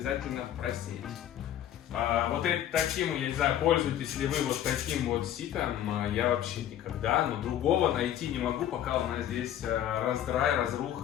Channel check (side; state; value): right; quieter; 11.1 dB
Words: просеять. Вот таким, я не знаю, пользуетесь ли вы вот таким вот ситом, я вообще никогда, но другого найти не могу, пока у нас здесь раздрай,